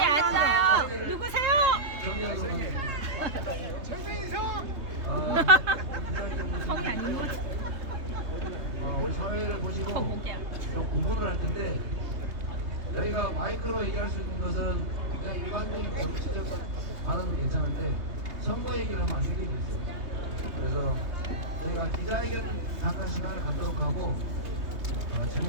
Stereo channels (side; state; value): left; late; 3.2 ms